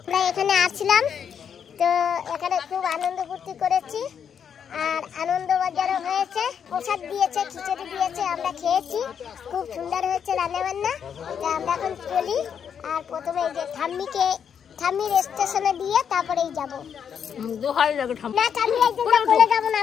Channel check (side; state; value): right; quieter; 7.8 dB